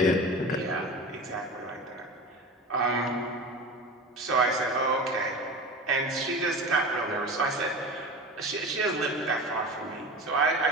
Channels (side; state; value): both; normal; correlation 0.32